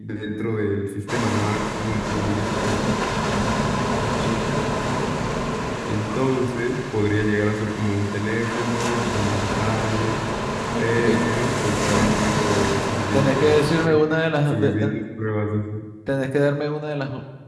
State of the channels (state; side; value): identical; both; correlation 1.00